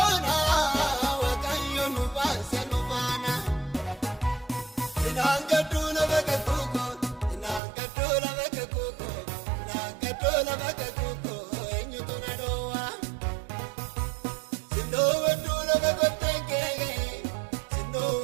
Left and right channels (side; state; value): left; drops out; at 7.6 s